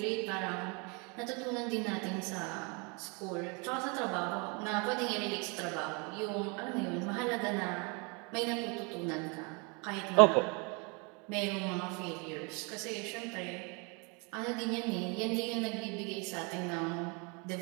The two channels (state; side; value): quieter; left; 31.8 dB